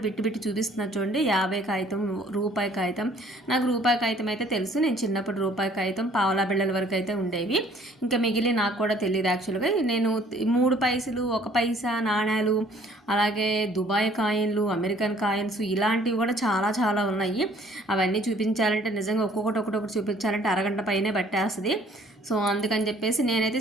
బిట్టి బిట్టి చూపిస్తున్నా చూడండి. 50 కాగితం, రూపాయి కాగితం. నాకు రూపాయి కాగితం అయితే తెలుసు. నేను చిన్నప్పుడు రూపాయి కాగితం, పావలా బిళ్ళల వరకు అయితే ఉండేవి. ఇంకా మిగిలి నాకు కూడా తెలియదు. యాక్చువల్గా నేను 3 పైసలు, 1 పైసా నాణ్యాలు, అలాగే దుబాయ్ కాయిన్లు, అమెరికన్ కాయిన్స్, ఇలాంటివి కూడా చాలా చాలా ఉన్నాయి. అవన్నీ చూపించాలంటే నిజంగా ఒక్కొక్కటి చూపించాలంటే అరగంట పైనే పట్టేస్తుంది. సో అందుకని చెప్పేసి నేనైతే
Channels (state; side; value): normal; both; correlation 0.57